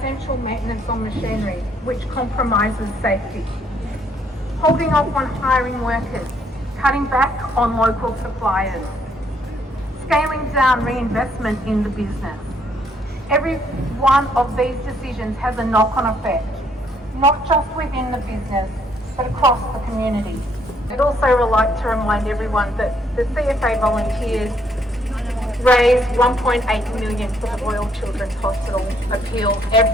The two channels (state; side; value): normal; both; correlation 0.69